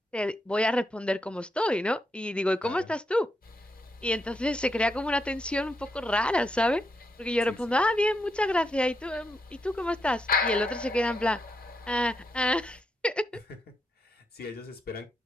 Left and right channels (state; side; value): normal; both; correlation 0.82